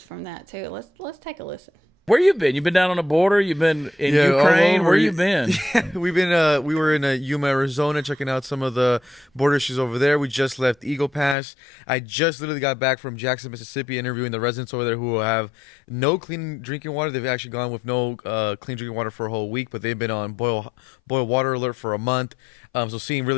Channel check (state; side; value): drops out; right; at 11.4 s